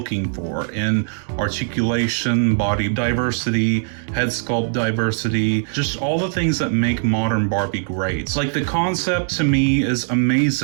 for in articulation, body diversity, head sculpt diversity, just all the things that make modern Barbie great. Like the concept to me is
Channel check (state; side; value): silent; left; 65 dB below the other